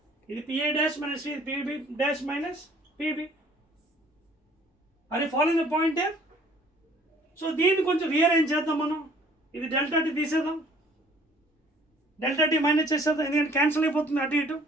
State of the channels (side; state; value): both; normal; correlation 0.56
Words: ఇది PA dash minus PB dash minus PB. అది following the point. So దీన్ని కొంచెం రీఅరేంజ్ చేద్దాం మనం. ఇది delta T తీసేద్దాం, డెల్టా టీ మైనస్ చేసేద్దాం, ఎందుకంటే క్యాన్సిల్ అయిపోతుంది అటు ఇటు.